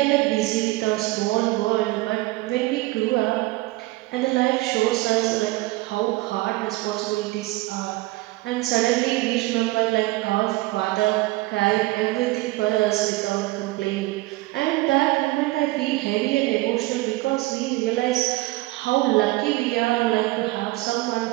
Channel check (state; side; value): quieter; left; 20.2 dB